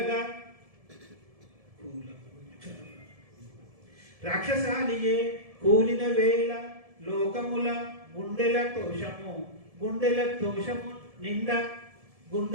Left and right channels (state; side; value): late; left; 1.7 ms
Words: కూలిన వేళ లోకముల గుండెల తోషము